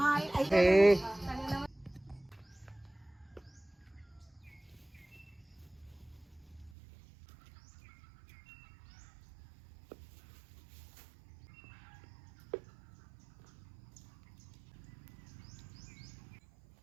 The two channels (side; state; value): left; drops out; at 6.7 s